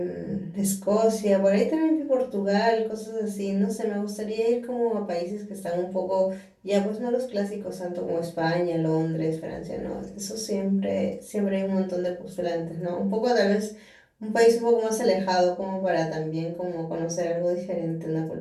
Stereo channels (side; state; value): both; identical; correlation 1.00